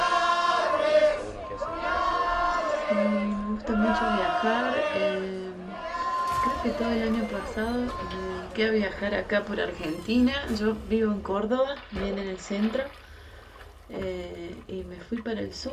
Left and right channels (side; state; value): both; identical; correlation 1.00